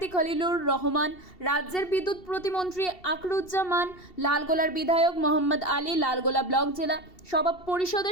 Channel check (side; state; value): right; late; 2.7 ms